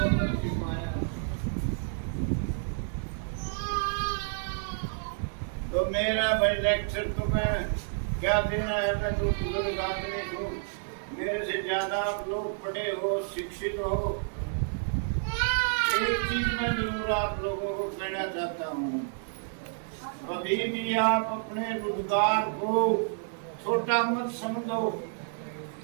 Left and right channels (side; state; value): left; silent; digital silence